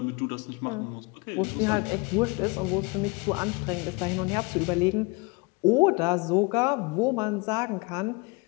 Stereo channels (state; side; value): quieter; right; 27.6 dB